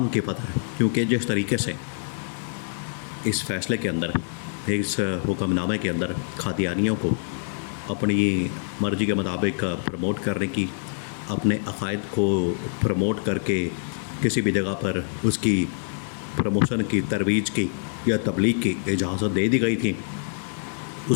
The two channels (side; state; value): right; silent; 61 dB below the other